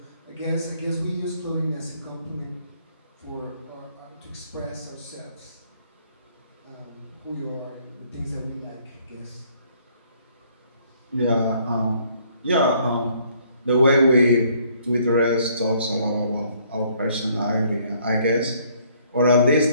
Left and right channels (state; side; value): inverted; both; correlation -0.64